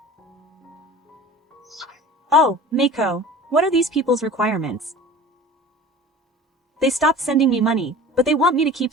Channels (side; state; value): both; normal; correlation 0.40